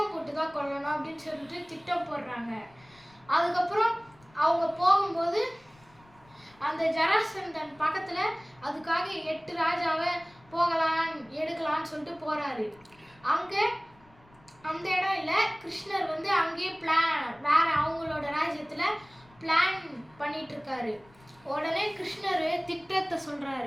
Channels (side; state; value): left; noise; rumble, 28 dB below the sound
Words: போட்டு தான் கொல்லணும் அப்படின்னு சொல்லிட்டு திட்டம் போடுறாங்க. அதுக்கப்புறம் அவங்க போகும்போது அந்த ஜராசந்தன் பக்கத்தில் அதுக்காக 8 ராஜாவை எடுக்கலான்னு சொல்லிட்டு போகிறாரு. அங்கே அந்த இடம் இல்லை, கிருஷ்ணர் வந்து அங்கேயே வேற அவங்களோட ராஜ்யத்தில் பிளான் பண்ணிட்டு இருக்காரு. உடனே கிருஷ்ணர் திட்டத்தை